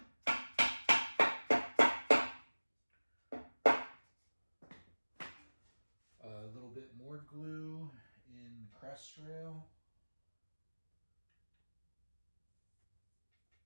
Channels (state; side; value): inverted; both; correlation -1.00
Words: A little bit more glue in the crest rail.